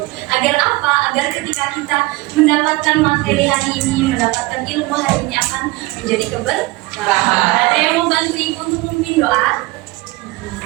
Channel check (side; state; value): left; quieter; 21.0 dB